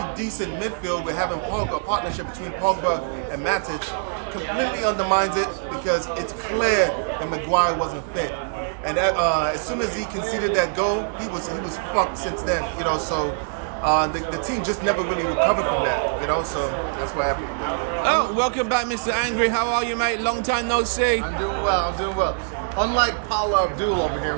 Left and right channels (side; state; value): left; silent; digital silence